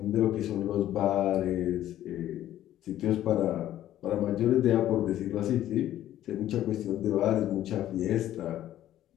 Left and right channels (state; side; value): quieter; right; 12.7 dB